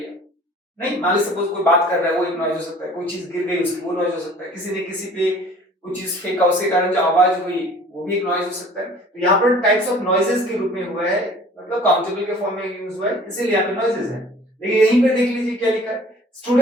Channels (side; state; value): both; normal; correlation 0.49